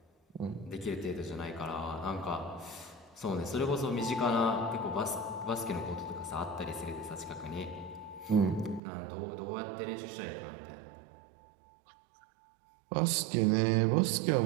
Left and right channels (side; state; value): left; drops out; at 8.8 s